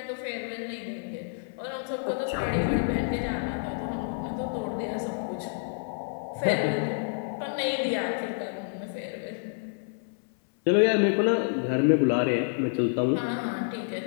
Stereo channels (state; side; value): silent; right; 59 dB below the other